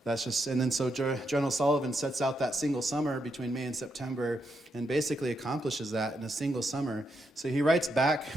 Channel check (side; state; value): both; normal; correlation 0.81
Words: that's just, and then so General Sullivan sets out that single summer between May and September and basically accomplishes that in a single summer. So he writes back